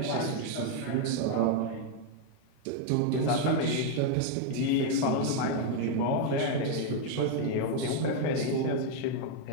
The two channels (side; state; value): both; different; correlation 0.00